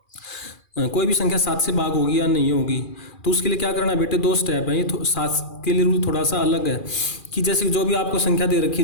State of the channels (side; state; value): right; late; 2.4 ms